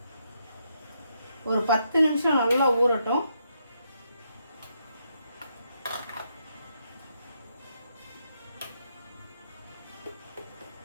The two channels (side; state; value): both; inverted; correlation -0.78